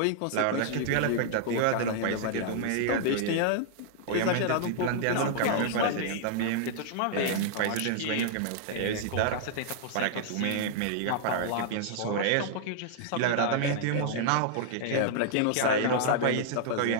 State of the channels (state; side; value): different; both; correlation -0.01